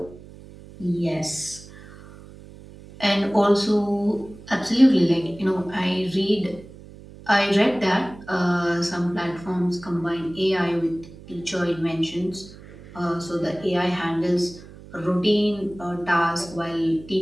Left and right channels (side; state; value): right; noise; hum, 19 dB below the sound